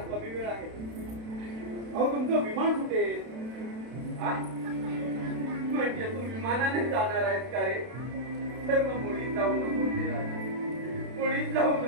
कमी वेळ आहे. अहो तुमचं विमान सुटेल. आ? म्हणजे तू विमानाने जाणार आहेस का रे? तर मग मुळीच जाऊ नको रे राजा, मुळीच जाऊ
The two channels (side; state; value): left; late; 32 ms